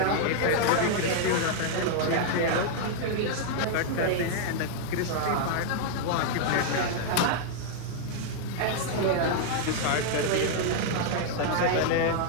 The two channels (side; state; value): both; different; correlation -0.01